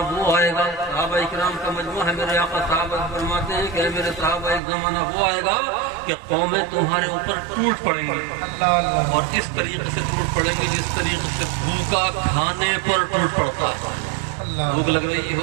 وہ آئے گا، صحابہ اکرام کا مجموعہ ہے، میرے آقا صحابہ فرماتے ہیں کہ میرے صحابہ ایک زمانہ وہ آئے گا کہ قومیں تمہارے اوپر ٹوٹ پڑیں گی، اللہ اللہ اور اس طریقے سے ٹوٹ پڑیں گے جس طریقے سے بھوکا کھانے پر ٹوٹ پڑتا ہے۔ بھوک لگ رہی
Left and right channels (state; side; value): drops out; left; at 4.6 s